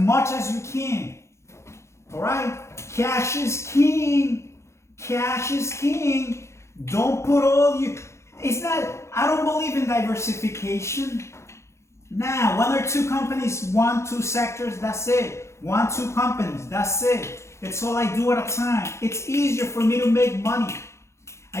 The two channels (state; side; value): late; right; 0.13 ms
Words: as you can, all right? Cash is king. Cash is king. Don't put all you... It's not... I don't believe in diversification. Nah, one or two companies, 1, 2 sectors, that's it. 1, 2 companies, that's it. It's all I do at a time. It's easier for me to make money.